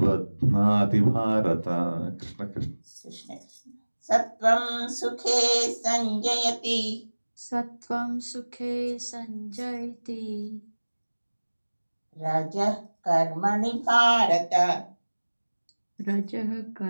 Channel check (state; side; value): inverted; both; correlation -1.00